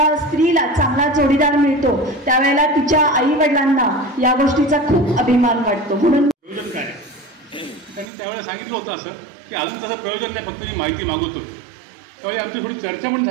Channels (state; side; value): drops out; left; at 8.1 s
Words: स्त्रीला चांगला जोडीदार मिळतो त्यावेळेला तिच्या आई वडिलांना या गोष्टीचा खूप अभिमान वाटतो. म्हणून प्रयोजन काय त्यांनी त्यावेळेला सांगितलं होतं असं की अजून तसं प्रयोजन नाही, फक्त मी माहिती मागवत होतो. त्यावेळी आमची थोडी चर्चा पण